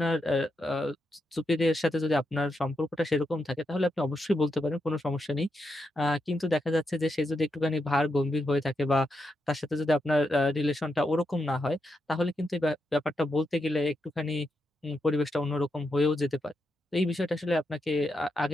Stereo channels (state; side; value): normal; both; correlation 0.84